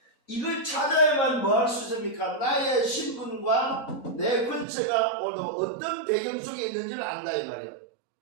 이걸 찾아야만 뭐 할 수 있습니까? 나의 신분과 내 근처가 오늘 어떤 배경 속에 있는지를 안다 이 말이야.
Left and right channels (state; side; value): drops out; left; at 4.7 s